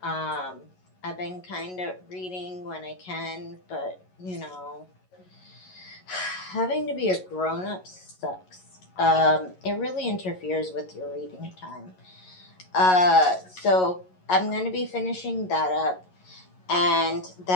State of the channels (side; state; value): right; late; 11 ms